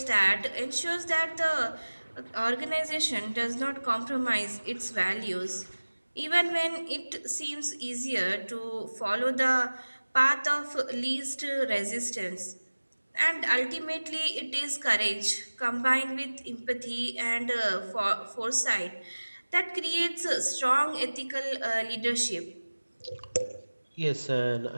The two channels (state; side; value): inverted; both; correlation -1.00